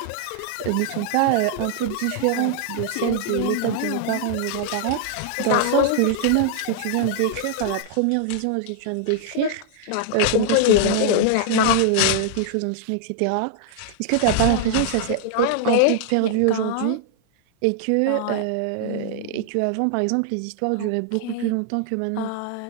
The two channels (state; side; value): different; both; correlation 0.00